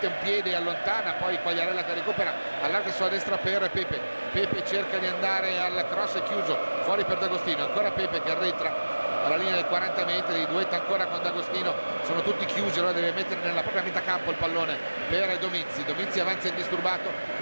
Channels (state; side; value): inverted; both; correlation -1.00